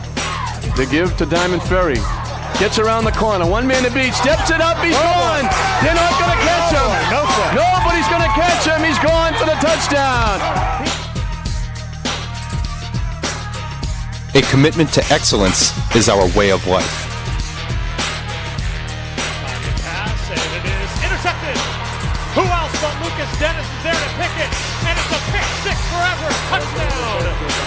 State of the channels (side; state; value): both; identical; correlation 1.00